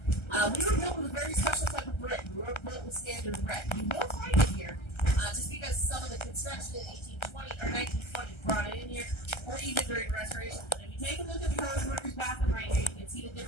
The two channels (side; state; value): right; late; 1.3 ms